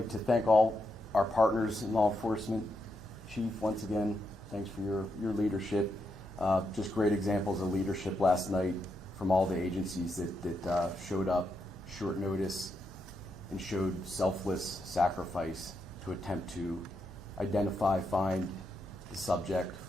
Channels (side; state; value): both; normal; correlation 0.82